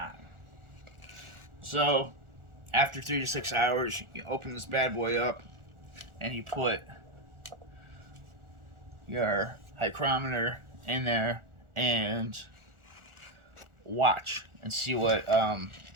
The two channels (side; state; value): left; late; 1.4 ms